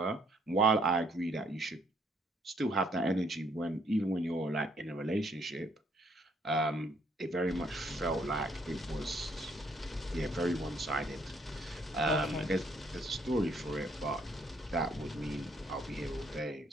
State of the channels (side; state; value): both; normal; correlation 0.68